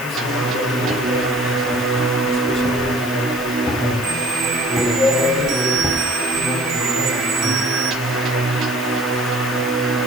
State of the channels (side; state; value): right; noise; hiss, 16 dB below the sound